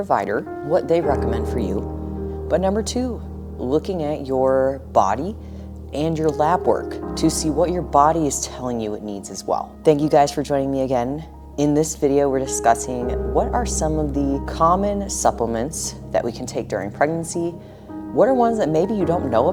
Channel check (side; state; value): both; identical; correlation 1.00